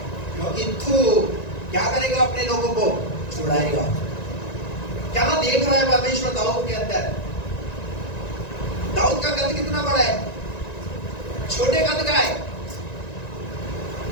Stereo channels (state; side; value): late; right; 1.9 ms